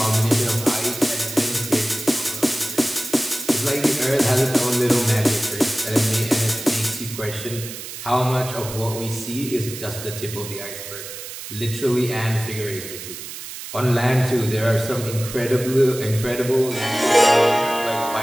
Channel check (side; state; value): right; noise; hiss, 10 dB below the sound